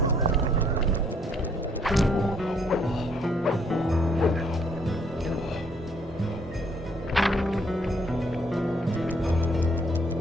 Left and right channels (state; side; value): normal; both; correlation 0.66